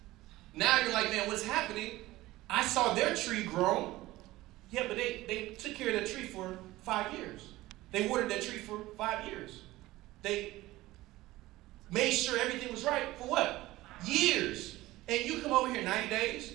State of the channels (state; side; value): quieter; left; 17.8 dB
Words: Now you're like, man, what's happening? I saw their tree grow. Yeah, but they took care of that tree for 5 years. They watered that tree for 5 years. They made sure everything was right for what? Years. And you come over here 90 days,